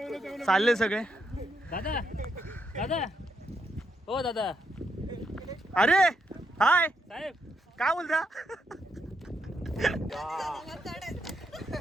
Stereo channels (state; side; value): normal; both; correlation 0.80